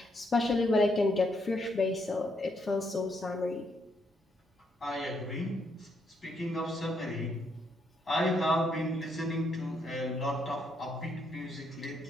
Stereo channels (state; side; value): normal; both; correlation 0.75